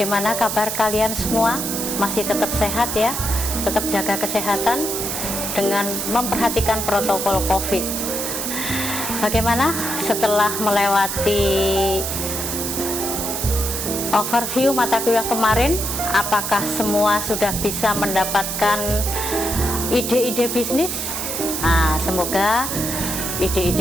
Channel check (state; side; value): noise; right; hiss, 3 dB below the sound